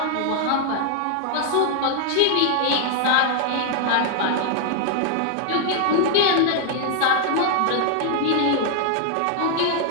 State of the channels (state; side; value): different; both; correlation 0.00